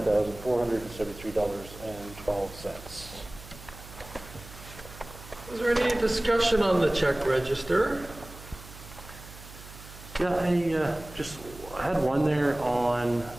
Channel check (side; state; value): right; noise; hum, 17 dB below the sound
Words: Is there any discussion on the check register? Yeah, I had one there on